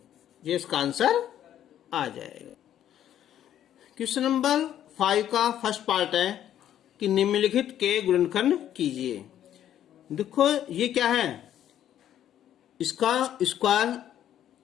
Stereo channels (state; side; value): quieter; right; 11.0 dB